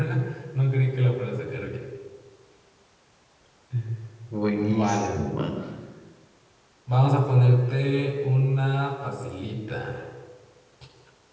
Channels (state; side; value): identical; both; correlation 1.00